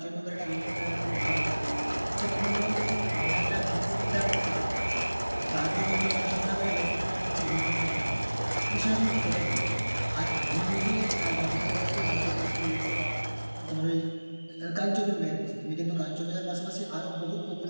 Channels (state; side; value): inverted; both; correlation -1.00